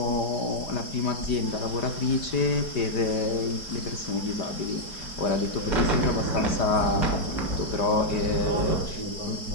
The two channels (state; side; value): late; right; 4.8 ms